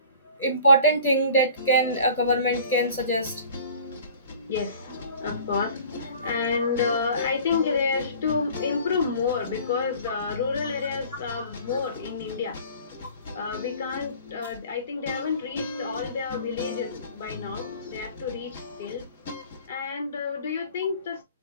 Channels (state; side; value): inverted; both; correlation -0.47